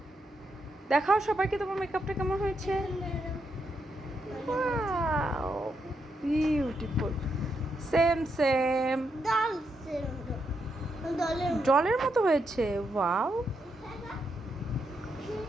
দেখাও সবাইকে তোমার মেকআপটা কেমন হয়েছে। ওয়াও, বিউটিফুল, সেম সেম, ডলের জলের মতো হয়েছে। ওয়াও,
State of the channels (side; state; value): both; normal; correlation 0.81